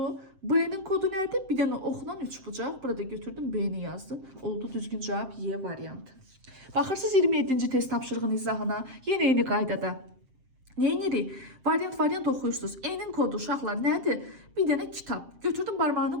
B-nin kodu nədir? Bir dənə oxla 3 bucaq. Burada götürdüm B-ni yazdım. Oldu düzgün cavab Y variantı. Baxırsınız 27-ci test tapşırığının izahına. Yenə eyni qaydada. Neyinirik? Variant oxuyursunuz. E-nin kodu uşaqlar nədir? Bir dənə kitab. Götürdüm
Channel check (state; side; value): late; left; 7.6 ms